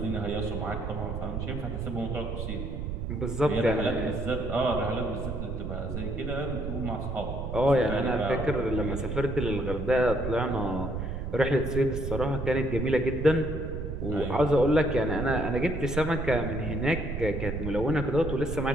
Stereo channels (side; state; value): right; noise; rumble, 5 dB below the sound